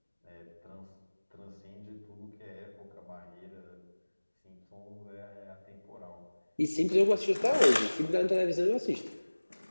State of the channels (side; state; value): both; inverted; correlation -1.00